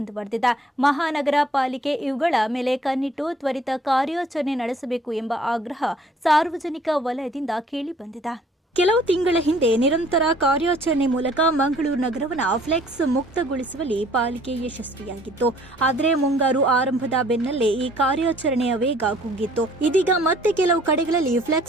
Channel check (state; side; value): normal; both; correlation 0.58